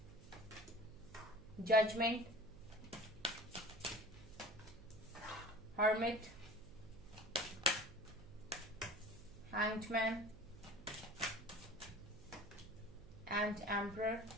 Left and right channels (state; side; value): noise; right; hum, 18 dB below the sound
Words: Judgement, hermit, hanged man and emperor.